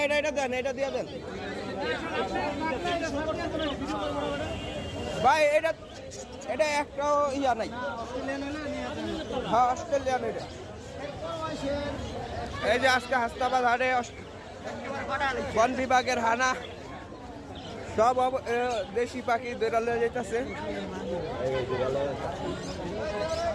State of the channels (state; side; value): identical; both; correlation 1.00